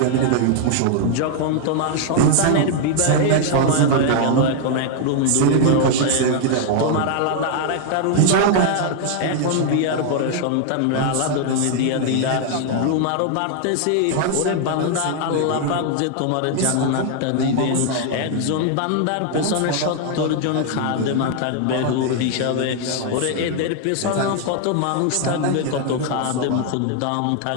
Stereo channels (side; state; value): both; different; correlation 0.00